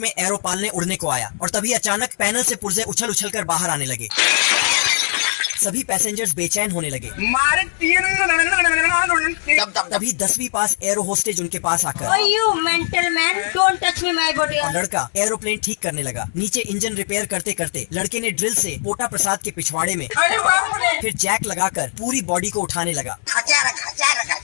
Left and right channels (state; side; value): silent; right; 61 dB below the other